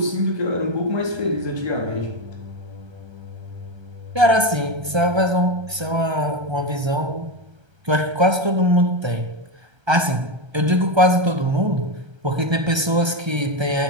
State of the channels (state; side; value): late; left; 1.3 ms